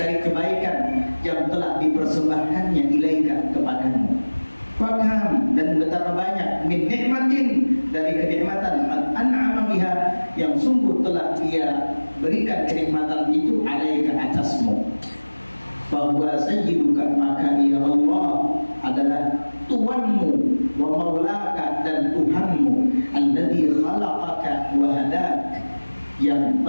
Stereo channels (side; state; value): both; inverted; correlation -1.00